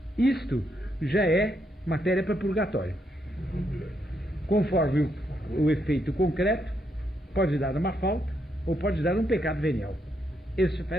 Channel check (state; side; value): normal; both; correlation 0.78